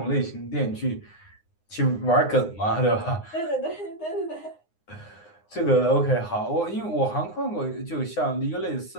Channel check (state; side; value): late; right; 9.7 ms